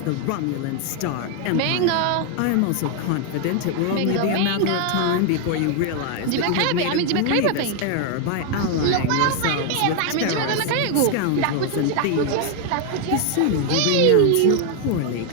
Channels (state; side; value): different; both; correlation 0.00